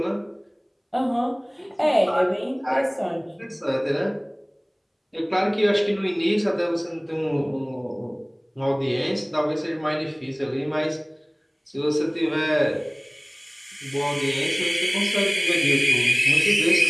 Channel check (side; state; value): both; identical; correlation 1.00